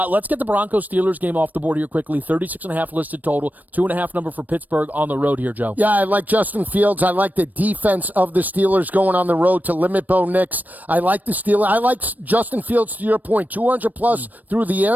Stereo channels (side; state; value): left; late; 0.083 ms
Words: Let's get the Broncos-Steelers game off the board here quickly. 36.5 listed total. 2.5 number for Pittsburgh on the road here, Joe. Yeah, I like Justin Fields. I like the defense of the Steelers going on the road to limit Bo Nix. I like the Steelers. I like Justin Fields, to your point. 200-plus through the